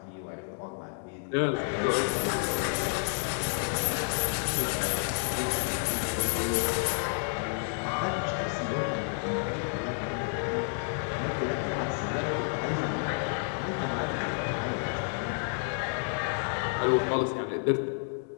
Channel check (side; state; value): right; silent; 58 dB below the other